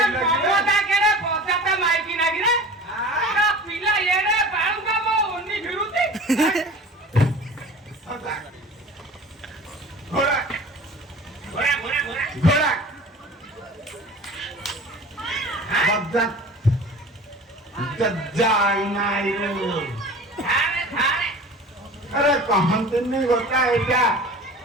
ममता केरे पचाता माइकी नागी रे आ पिला ये रे बाळू का मो उन्नी फिरुती घोड़ा घोड़ा घोड़ा घोड़ा घोड़ा बद्दा जज्जाई नाई थारे थारे अरे कहंत नहीं होता है क्या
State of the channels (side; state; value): both; normal; correlation 0.40